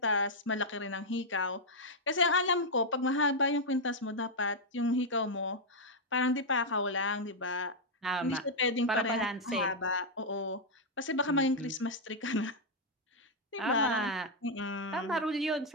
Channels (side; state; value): both; normal; correlation -0.02